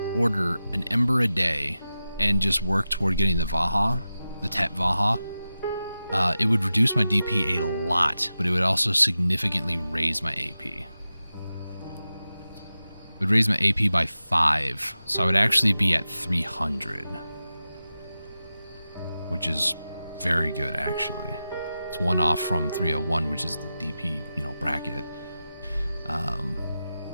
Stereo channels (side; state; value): both; inverted; correlation -0.93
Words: order an ember a day and just work toward getting the Vaha, the Tet Vaha, it would reduce my DP a lot, but it would also significantly raise my AP. It would raise my AP by 5, so I would actually be at 300, which is very good, actually. It's one off from 301, which is the DP, bracket.